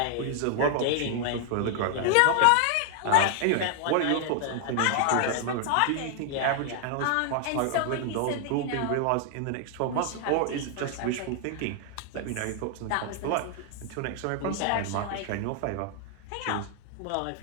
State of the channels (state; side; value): different; both; correlation 0.00